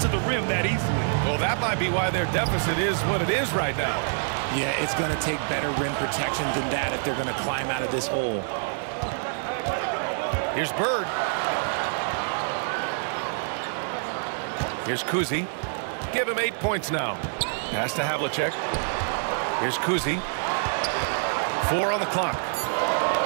the rim that easily. Well, that might be why their deficit is what it is right now. Yeah, it's going to take better rim protection than that if they're going to climb out of this hole. Here's Bird. Here's Kuzi. Give him 8 points now. Pass to Havlicek. Here's Kuzi. 4 on the clock.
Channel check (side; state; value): left; silent; digital silence